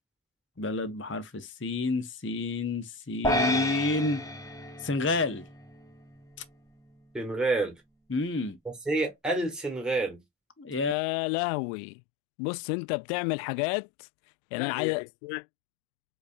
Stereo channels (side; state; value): right; drops out; at 11.0 s